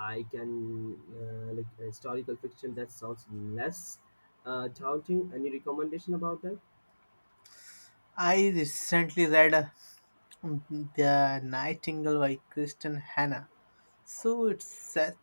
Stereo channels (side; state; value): both; inverted; correlation -1.00